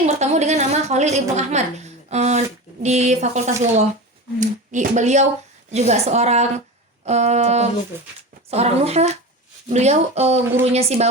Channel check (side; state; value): both; normal; correlation 0.27